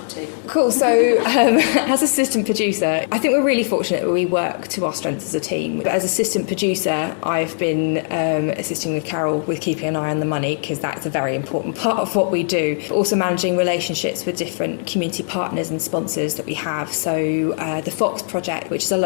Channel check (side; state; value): right; silent; digital silence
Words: to? Cool. So as assistant producer, I think we're really fortunate that we work to our strengths as a team. But as assistant producer, I've been assisting with Carol with keeping an eye on the money, because that's a very important part of what we do. But also managing relationships with different community partners and sponsors that we have. So the Fox Project, which is a